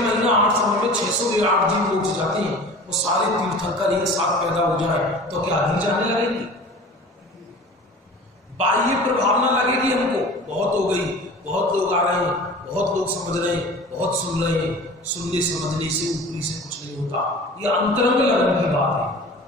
8 समय में 608 जीव मोक्ष जाते हैं, वो सारे तीर्थंकर एक साथ पैदा हो जाए तो क्या अधिक जाने लगेंगे? बाह्य प्रभाव ना लगेगी हमको, बहुत हो गई, बहुत लोग आ रहे हैं, बहुत लोग समझ रहे हैं, बहुत सुन रहे हैं। सुनने समझने से ऊपरी से कुछ नहीं होता। यह अंतरंग लगन की बात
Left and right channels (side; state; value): both; normal; correlation 0.41